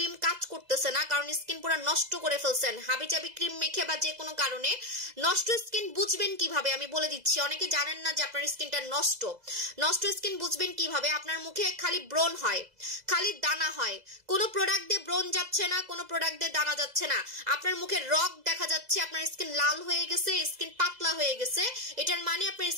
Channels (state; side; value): late; left; 2.0 ms